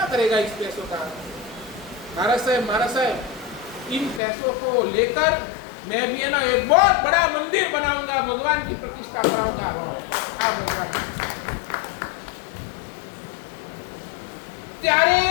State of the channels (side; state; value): right; drops out; at 4.2 s